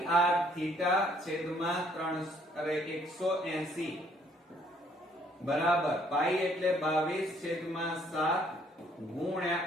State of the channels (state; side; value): normal; both; correlation 0.64